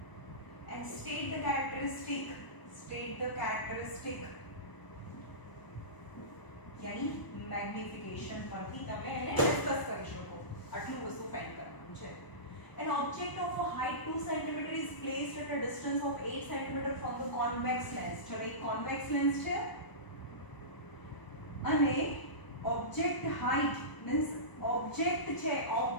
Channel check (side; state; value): right; late; 1.0 ms